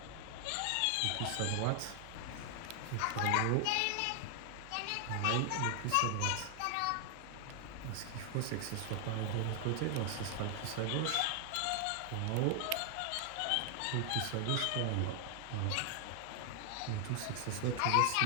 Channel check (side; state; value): both; different; correlation 0.00